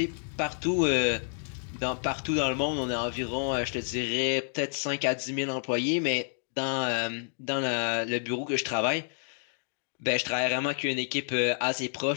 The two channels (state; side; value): silent; right; 58 dB below the other